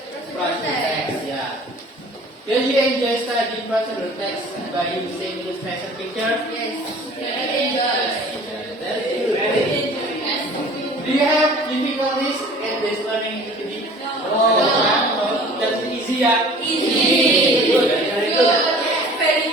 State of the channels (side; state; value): both; normal; correlation 0.47